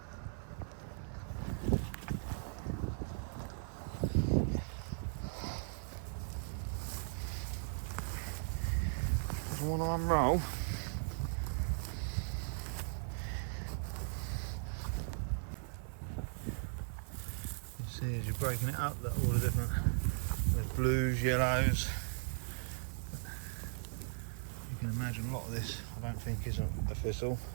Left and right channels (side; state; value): left; silent; 52 dB below the other